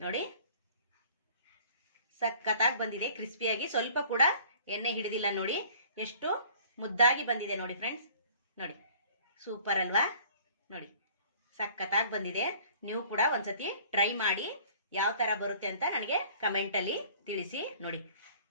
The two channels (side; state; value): both; inverted; correlation -0.52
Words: ಸಖತ್ತಾಗಿ ಬಂದಿದೆ, ಕ್ರಿಸ್ಪಿಯಾಗಿ. ಸ್ವಲ್ಪ ಕೂಡ ಎಣ್ಣೆ ಹಿಡಿದಿಲ್ಲ. ನೋಡಿ, ಎಷ್ಟು ಮುದ್ದಾಗಿ ಬಂದಿದೆ ನೋಡಿ ಫ್ರೆಂಡ್ಸ್. ನೋಡಿ, ಸೂಪರ್ ಅಲ್ವಾ. ನೋಡಿ, ಸಖತ್ತಾಗಿ ಬಂದಿದೆ. ನೀವು ಕೂಡ ಒಂದ್ಸತಿ ಟ್ರೈ ಮಾಡಿ ಯಾವ ತರ ಬರುತ್ತೆ ಅಂತ ನನಗೆ ಕಮೆಂಟ್ ಅಲ್ಲಿ ತಿಳಿಸಿ. ನೋಡಿ,